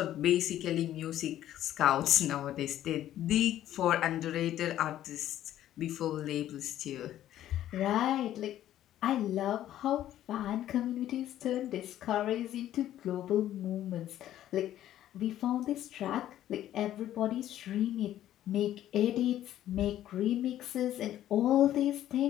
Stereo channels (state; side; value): quieter; right; 12.4 dB